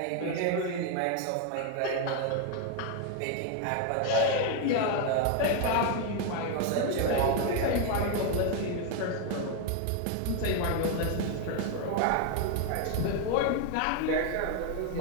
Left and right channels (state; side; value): different; both; correlation 0.01